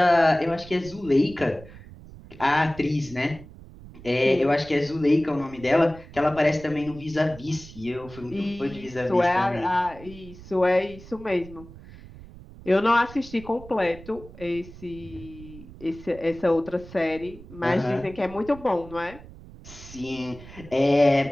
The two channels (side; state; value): right; noise; rumble, 18 dB below the sound